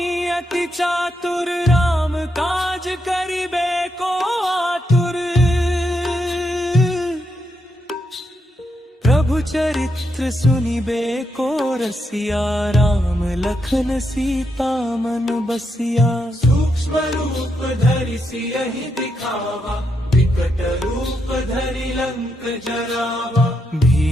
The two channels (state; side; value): normal; both; correlation 0.81